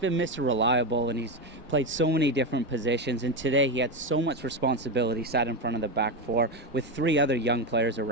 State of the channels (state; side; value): normal; both; correlation 0.14